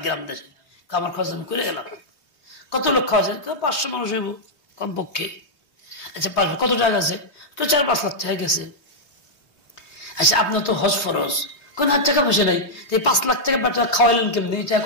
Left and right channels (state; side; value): late; right; 3.2 ms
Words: গ্রাম দেশে, আমার খরচ আমি করে গেলাম। কত লোক খাওয়া যায়? 500 মানুষ হইব কমপক্ষে। আচ্ছা 5 কত টাকা আছে? 4-5 লাখ টাকা গেছে। আচ্ছা আপনার তো হজ ফরজ, কোন হাত টাকা পয়সা নাই, 5 লাখ টাকা খাওয়াইলেন কেমনি? এটা